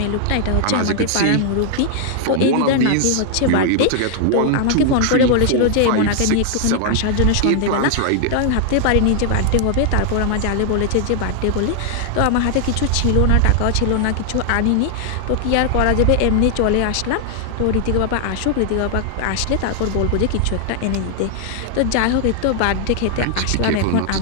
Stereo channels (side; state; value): both; different; correlation 0.00